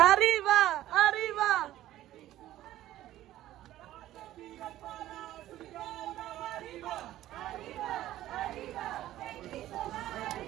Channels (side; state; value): left; quieter; 14.1 dB